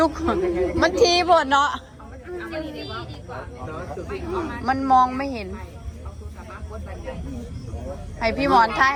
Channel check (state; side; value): identical; both; correlation 1.00